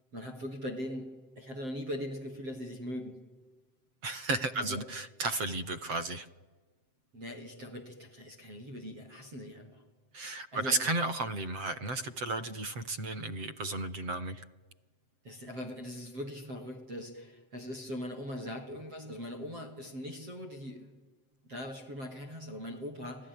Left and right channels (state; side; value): late; left; 7.7 ms